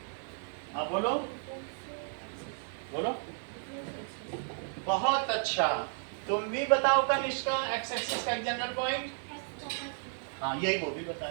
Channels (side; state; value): left; silent; 55 dB below the other